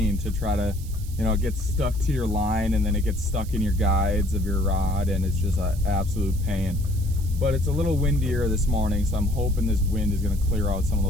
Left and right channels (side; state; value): right; noise; hiss, 19 dB below the sound